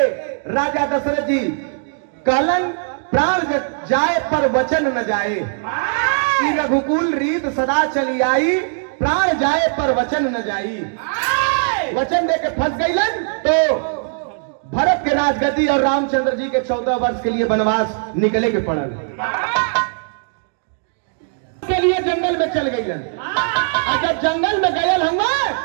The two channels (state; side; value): silent; left; digital silence